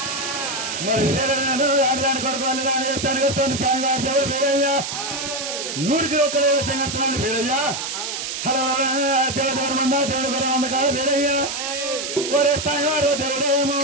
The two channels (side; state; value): right; noise; hiss, 5 dB below the sound